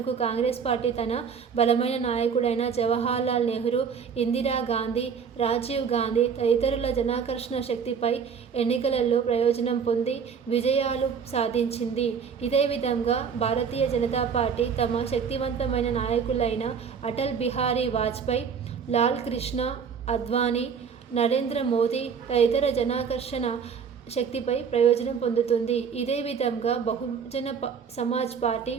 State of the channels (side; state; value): left; quieter; 6.6 dB